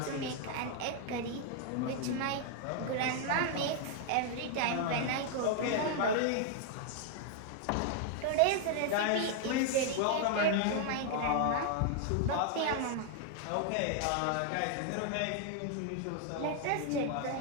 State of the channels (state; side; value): different; both; correlation 0.00